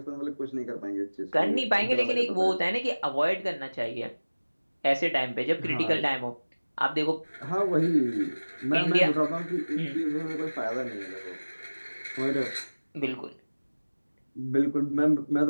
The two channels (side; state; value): both; inverted; correlation -1.00